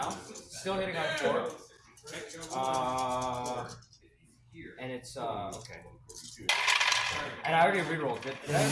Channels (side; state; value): both; identical; correlation 1.00